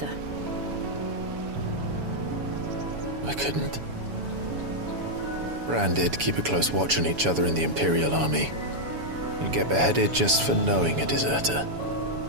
I couldn't. Ran did keep a close watch on each other in the Imperial Army. You'd get beheaded just for knowing a deserter.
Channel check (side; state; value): left; late; 7.1 ms